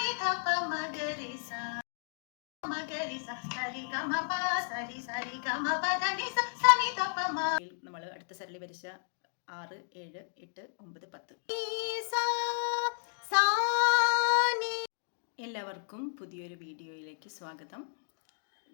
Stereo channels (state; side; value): silent; right; digital silence